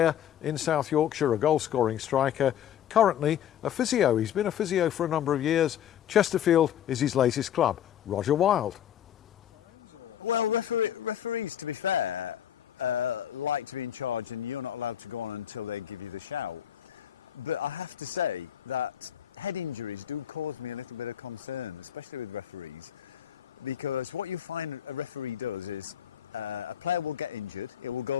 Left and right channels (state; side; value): quieter; right; 10.3 dB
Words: in South Yorkshire, a goal-scoring striker, currently a physio. He's been a physio for a number of years. Chesterfield is his latest club. Roger Wylde. Well, referees, to be fair, like to be in charge, and you're not allowed to go on until they give you the shout. But I have to say that head injuries do cause me a little bit of concern, especially with referees, because what you find a referee does is a player will get injured, it will